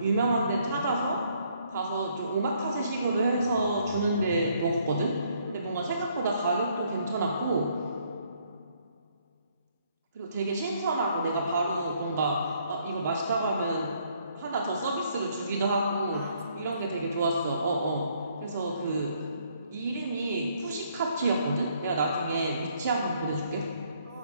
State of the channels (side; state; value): both; inverted; correlation -0.68